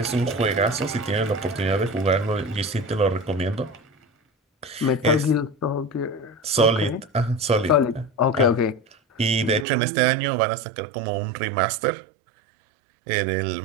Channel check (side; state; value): left; drops out; at 9.7 s